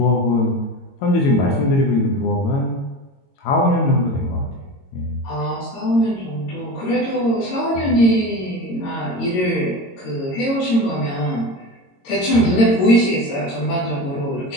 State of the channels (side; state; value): right; late; 22 ms